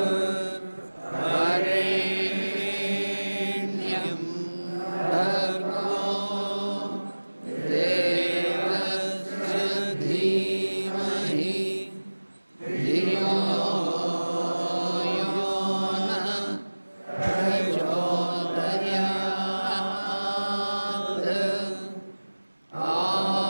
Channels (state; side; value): inverted; both; correlation -1.00